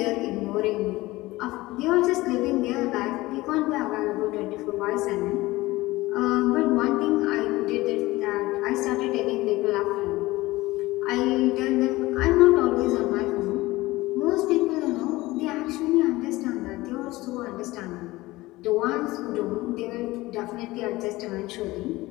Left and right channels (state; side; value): quieter; right; 19.4 dB